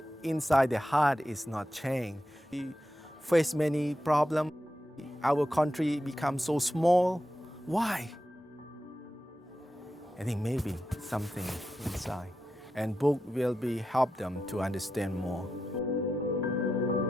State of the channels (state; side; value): normal; both; correlation 0.89